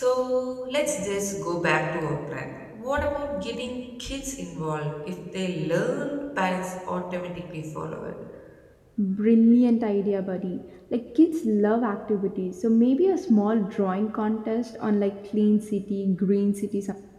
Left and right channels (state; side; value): identical; both; correlation 1.00